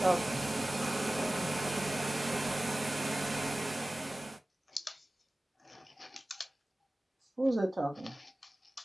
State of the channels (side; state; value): both; normal; correlation 0.97